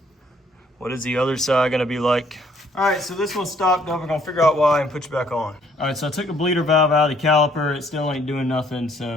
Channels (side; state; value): both; normal; correlation 0.63